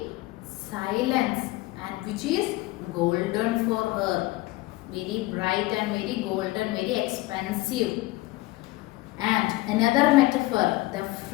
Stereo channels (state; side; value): quieter; right; 19.5 dB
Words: silence, and which is golden for her. Very bright and very golden, very expensive. And another metaphor, the